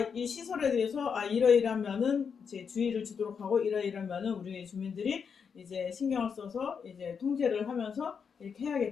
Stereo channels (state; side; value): quieter; right; 6.4 dB